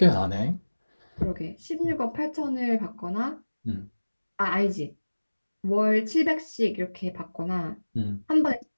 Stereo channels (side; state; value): both; inverted; correlation -1.00